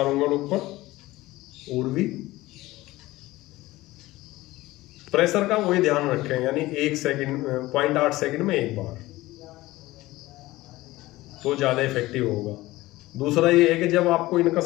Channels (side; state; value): right; quieter; 18.2 dB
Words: उंगल ऊपर, ऊर्वी। प्रेशर का वही ध्यान रखें, यानी 1 सेकंड 0.8 सेकंड में 1 बार, तो ज्यादा इफेक्टिव होगा। दूसरा ये है कि जब आपको इनका